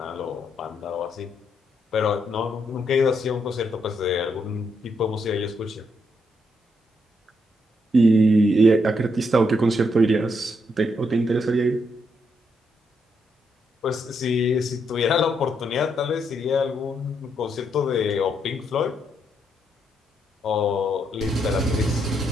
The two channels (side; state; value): both; normal; correlation 0.77